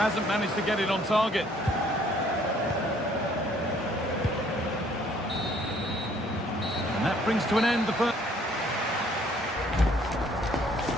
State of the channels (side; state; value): both; normal; correlation 0.61